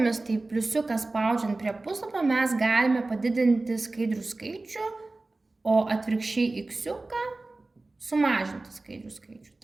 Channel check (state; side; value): quieter; left; 3.2 dB